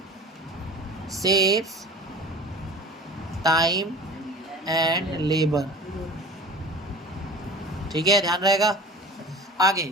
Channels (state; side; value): normal; both; correlation 0.38